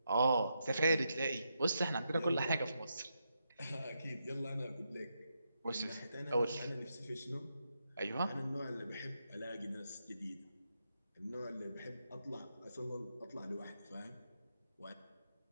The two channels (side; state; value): both; inverted; correlation -0.83